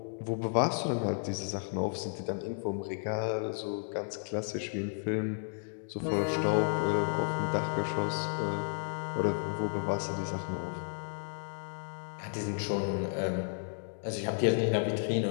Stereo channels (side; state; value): right; silent; digital silence